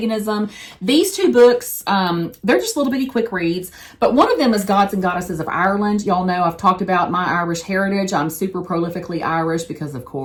These two books, they're just little bitty quick reads. But one of them is Gods and Goddesses of Ireland. Y'all know I've talked about my Irish heritage. I'm super prolifically Irish because, of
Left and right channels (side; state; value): both; identical; correlation 1.00